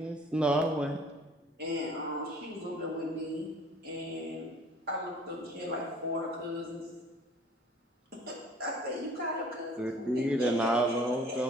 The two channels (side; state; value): both; normal; correlation 0.52